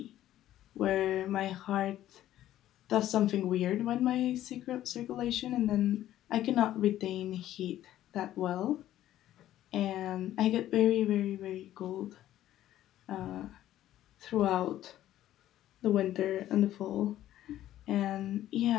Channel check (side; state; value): right; quieter; 13.1 dB